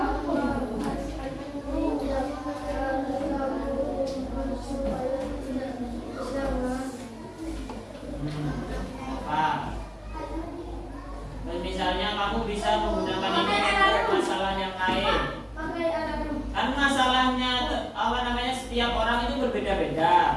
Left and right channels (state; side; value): identical; both; correlation 1.00